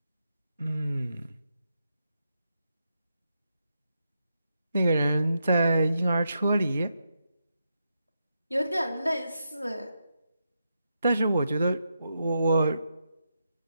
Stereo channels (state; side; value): inverted; both; correlation -0.85